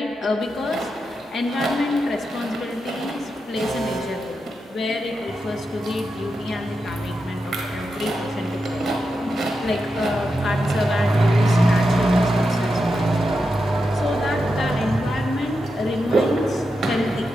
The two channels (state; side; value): normal; both; correlation 0.87